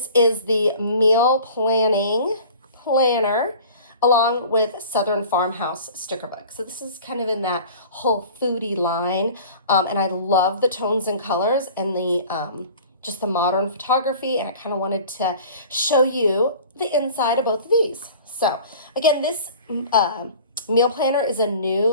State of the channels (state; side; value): inverted; both; correlation -0.43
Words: is the Meal Planning Planner along with Southern Farmhouse sticker book. So this is kind of in that whole foodie line, and I love the tones and colors and the just the modern photography, and I kind of wanted to show you the inside of both of these. So again, this meal planner is a